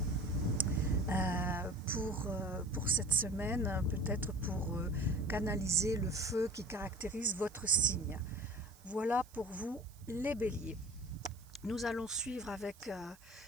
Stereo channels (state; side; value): noise; right; hiss, 25 dB below the sound